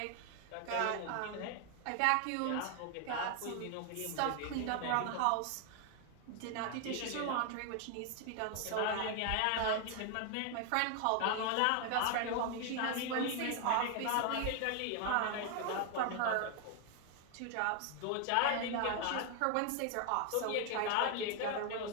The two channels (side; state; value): both; different; correlation 0.00